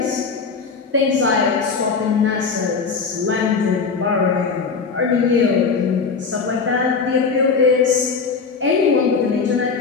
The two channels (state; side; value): quieter; right; 5.1 dB